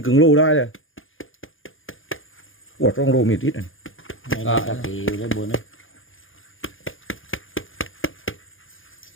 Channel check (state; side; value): late; right; 0.58 ms